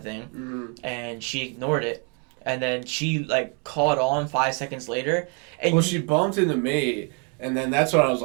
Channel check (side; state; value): left; quieter; 37.1 dB